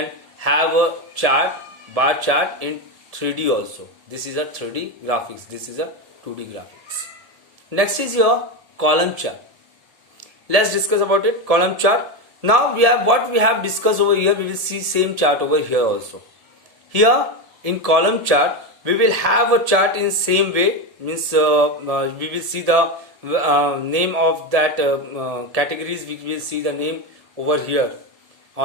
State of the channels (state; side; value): late; left; 1.7 ms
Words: have a chart, bar chart in 3D also. This is a 3D graphics. This is a 2D graphics. Next is your column chart. Let's discuss about it. Column chart. Now we have what we have discussed over here. We will see same chart over here also. Here in column chart we will have a chart in same way. Means we will see the name of that categories. We will see the name over here